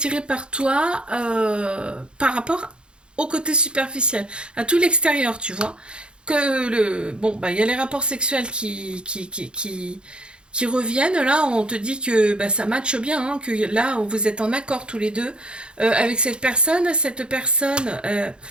par toi par rapport au côté superficiel, à tout l'extérieur, tu vois. Bon, bah, il y a les rapports sexuels qui reviennent. Là, on te dit que bah, ça matche bien, hein, que là, vous êtes en accord tous les deux avec cette personne. Cette personne,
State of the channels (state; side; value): late; left; 0.053 ms